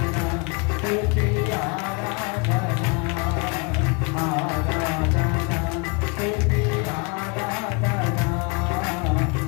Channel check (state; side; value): quieter; right; 30.9 dB